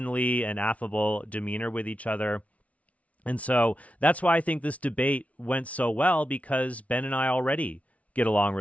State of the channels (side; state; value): right; late; 0.066 ms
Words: and affable demeanor with each other. And so that's why I think this debate went so well, because Ben and I already get along